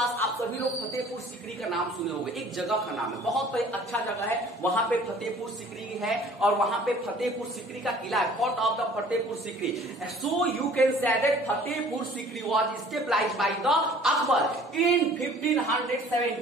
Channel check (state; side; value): normal; both; correlation 0.51